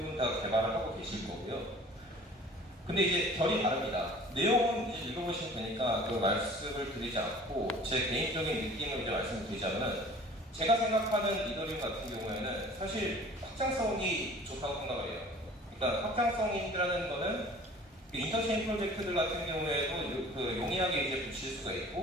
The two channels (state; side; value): normal; both; correlation 0.47